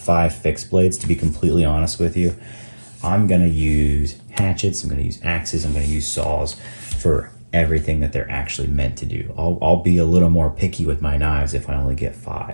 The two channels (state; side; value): inverted; both; correlation -1.00